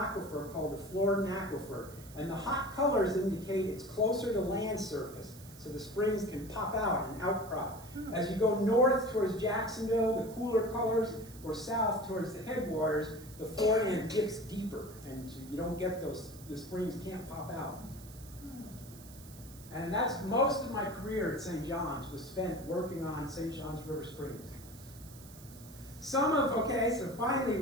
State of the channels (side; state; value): right; noise; hiss, 19 dB below the sound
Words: called the Floridan Aquifer. And the hot colors indicate it's closer to land surface, so the springs can pop out and outcrop. As you go north towards Jacksonville, the cooler colors, or south towards the headwaters, the Floridan dips deeper, and you don't get those, the springs can't pop out. And that's most of my career at St. John's was spent working on St. John's River Springs. So finally